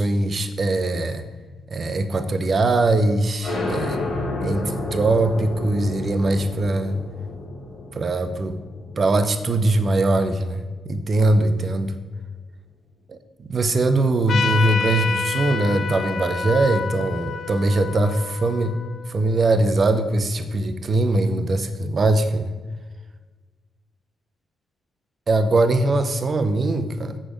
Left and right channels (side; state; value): both; normal; correlation 0.83